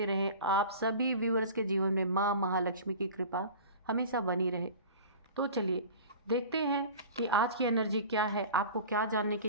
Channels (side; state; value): both; inverted; correlation -0.38